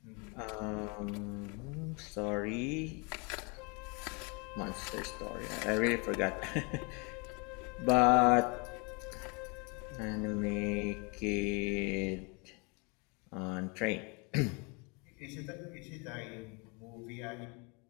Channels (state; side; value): quieter; right; 31.2 dB